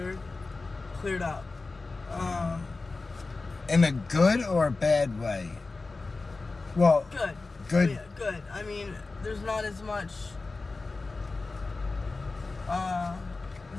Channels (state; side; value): quieter; right; 3.7 dB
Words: up. In a good or a bad way? Well, good. good. Yeah, good. I mean, there's not as much